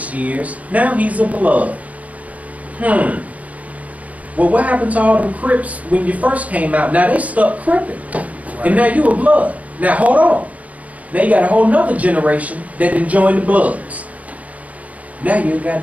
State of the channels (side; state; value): left; late; 0.070 ms